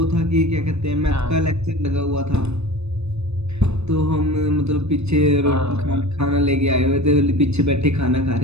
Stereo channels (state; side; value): late; left; 0.80 ms